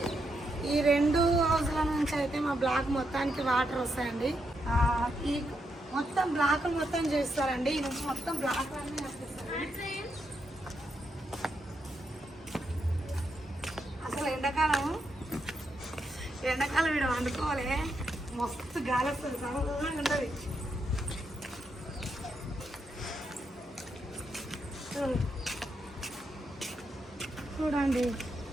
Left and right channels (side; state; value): both; normal; correlation 0.82